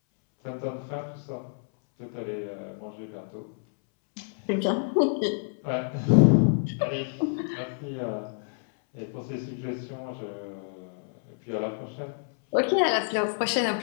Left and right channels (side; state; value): right; silent; 59 dB below the other